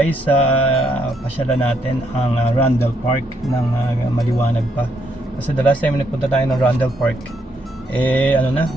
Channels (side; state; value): both; normal; correlation 0.75